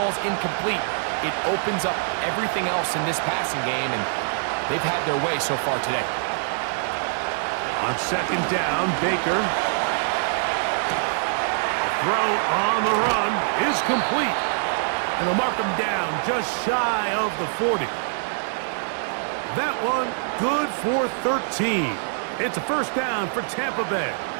incomplete, it opens up everything else in this passing game, and they've had their way so far today. On second down, Baker. The throw on the run is complete. And they'll mark him down just shy of the 40. That one good for 13. It's a first down for Tampa Bay.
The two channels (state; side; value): silent; left; digital silence